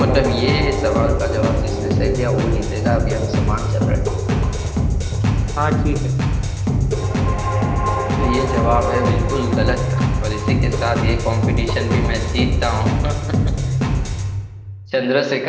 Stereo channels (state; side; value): identical; both; correlation 1.00